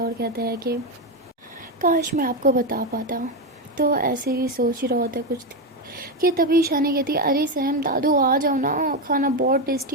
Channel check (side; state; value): both; normal; correlation 0.10